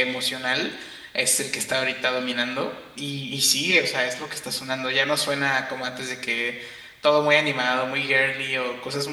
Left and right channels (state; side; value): identical; both; correlation 1.00